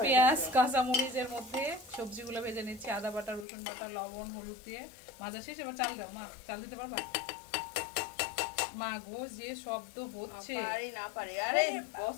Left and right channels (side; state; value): right; drops out; at 3.5 s